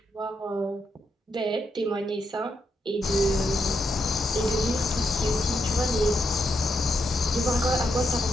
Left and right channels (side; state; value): both; normal; correlation 0.81